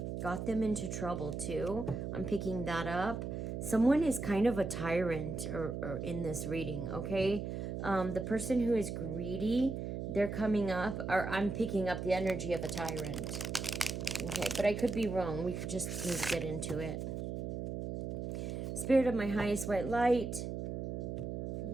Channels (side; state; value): right; noise; hum, 4 dB below the sound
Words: got them into trouble too. I'm picking that up. Someone is kind of a tyrant or in this reading, okay? The person who is greedy, they're coming up, or I'm picking up the energy of a tyrant. Okay, but I could be wrong. We could just need to get into it. Spirit of my highest white light,